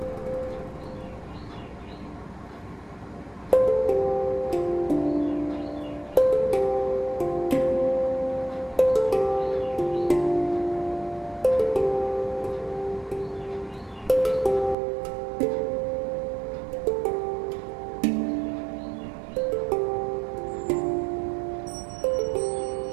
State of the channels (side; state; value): left; drops out; at 14.8 s